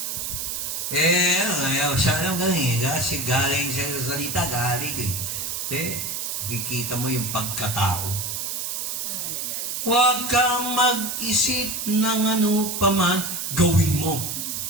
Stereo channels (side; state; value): right; noise; hiss, 3 dB below the sound